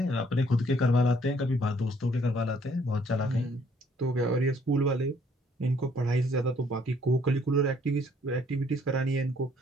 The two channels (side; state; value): both; normal; correlation 0.64